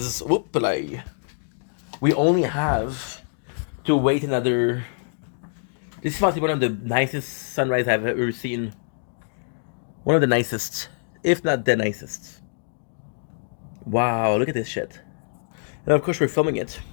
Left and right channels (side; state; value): right; silent; digital silence